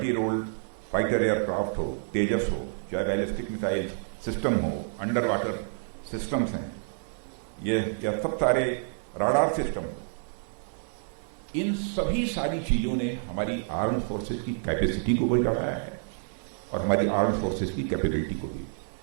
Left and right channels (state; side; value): silent; left; digital silence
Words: रोल फाइटर एयरक्राफ्ट हो, तेजस हो, चाहे बैलिस्टिक मिसाइल सिस्टम हो, अंडर वाटर सिस्टम्स हैं, यह सब सारे राडार सिस्टम हो, इन सभी सारी चीजों ने हमारी आर्म फोर्सेस की कैपेसिटी को भी बढ़ाया है और हमारी आर्म फोर्सेस की कैपेबिलिटी को भी